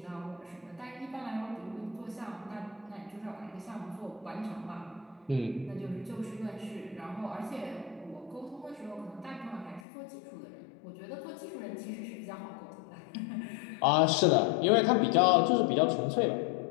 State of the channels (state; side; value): drops out; right; at 9.8 s